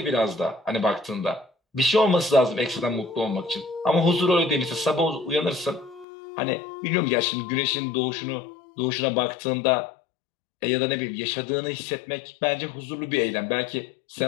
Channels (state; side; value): drops out; right; at 6.1 s